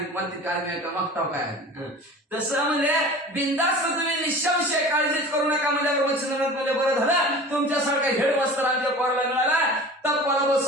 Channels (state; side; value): normal; both; correlation 0.39